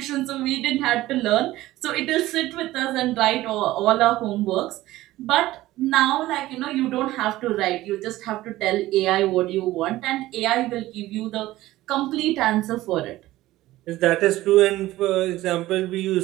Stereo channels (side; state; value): left; quieter; 16.5 dB